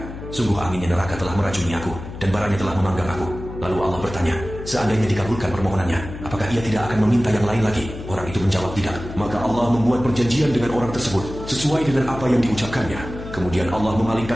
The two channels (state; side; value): noise; left; hum, 11 dB below the sound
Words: Sungguh anginnya neraka telah meracuni aku, dan baranya telah memanggang aku." Lalu Allah bertanya, seandainya dikabulkan permohonannya, apakah ia tidak akan meminta yang lain lagi? Orang itu menjawab tidak. Maka Allah membuat perjanjian dengan orang tersebut, sesuai dengan apa yang diucapkannya. Kemudian Allah